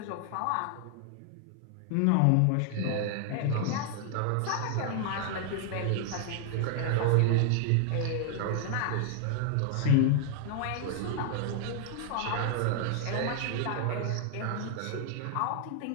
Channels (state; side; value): different; both; correlation 0.00